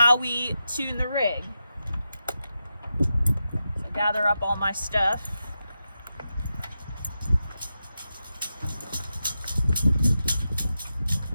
we tune the rig. So gather up all my stuff.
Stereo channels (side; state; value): both; inverted; correlation -0.89